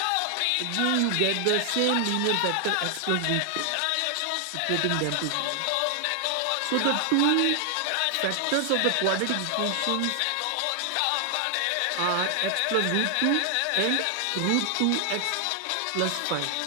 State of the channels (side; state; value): both; different; correlation 0.00